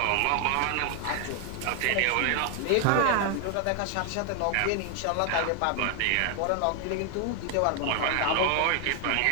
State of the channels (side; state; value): both; different; correlation 0.00